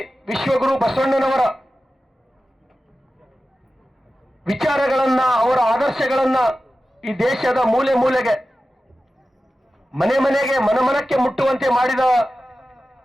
ವಿಶ್ವಗುರು ಬಸವಣ್ಣನವರ ವಿಚಾರಗಳನ್ನ, ಅವರ ಆದರ್ಶಗಳನ್ನ ಈ ದೇಶದ ಮೂಲೆ ಮೂಲೆಗೆ, ಮನೆ ಮನೆಗೆ, ಮನಮನಕ್ಕೆ ಮುಟ್ಟುವಂತೆ ಮಾಡಿದ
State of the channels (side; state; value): both; normal; correlation 0.94